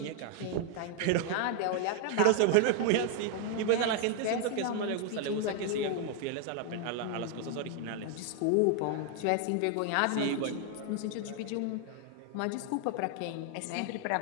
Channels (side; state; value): both; different; correlation 0.00